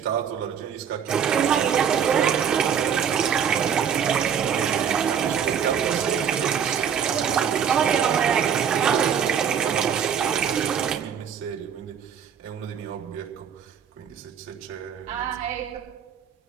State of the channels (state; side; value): quieter; left; 7.9 dB